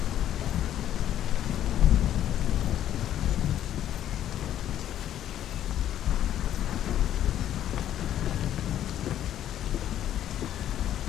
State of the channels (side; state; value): right; quieter; 11.3 dB